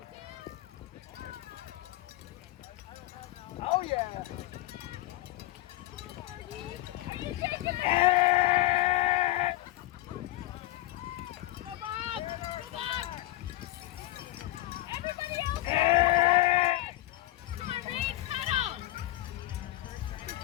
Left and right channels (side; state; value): right; quieter; 17.2 dB